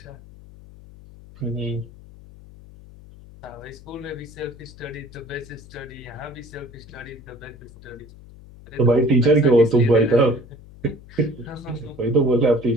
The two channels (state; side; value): noise; left; hum, 20 dB below the sound